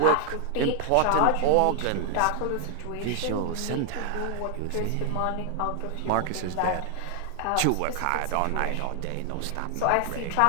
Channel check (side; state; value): both; different; correlation 0.00